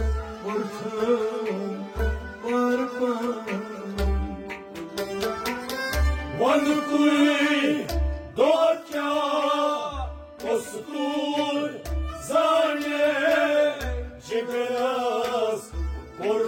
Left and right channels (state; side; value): identical; both; correlation 1.00